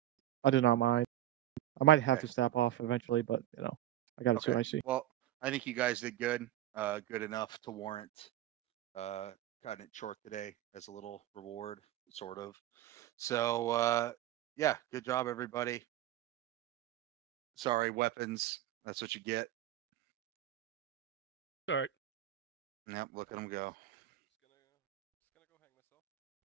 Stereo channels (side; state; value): left; quieter; 13.5 dB